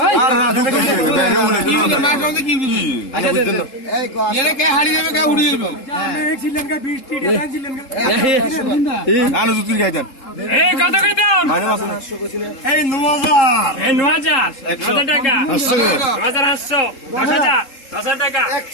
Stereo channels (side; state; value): right; late; 3.7 ms